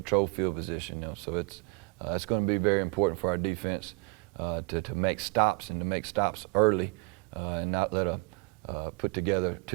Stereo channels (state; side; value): quieter; left; 31.2 dB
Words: field position. You know, so it's going to be very important for our defense to make stops and to make stops early and not let a put together